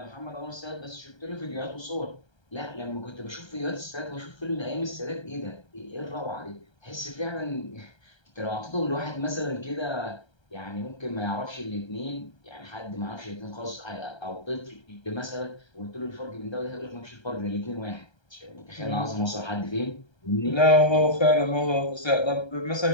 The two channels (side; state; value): right; late; 1.3 ms